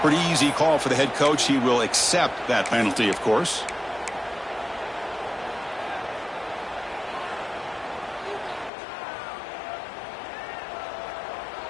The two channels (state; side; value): drops out; right; at 8.7 s